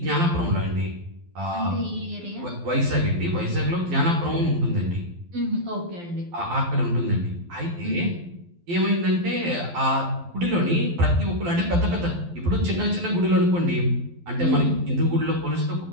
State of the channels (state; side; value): late; left; 12 ms